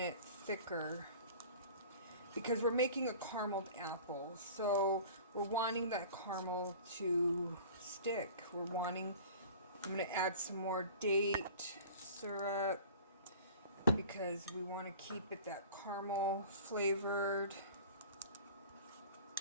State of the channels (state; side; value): inverted; both; correlation -0.42